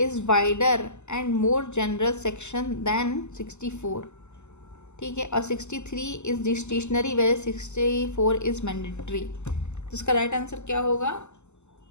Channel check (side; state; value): right; late; 0.83 ms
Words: wider and more general section than 64, ठीक है। और 63 is discretionary where 64 is mandatory. तो इसका राइट आंसर क्या होगा,